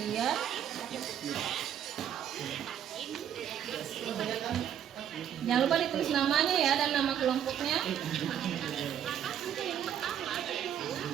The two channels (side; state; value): left; quieter; 9.6 dB